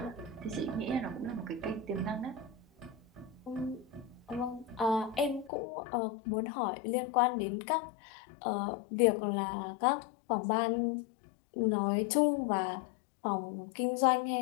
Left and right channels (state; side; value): drops out; right; at 5.5 s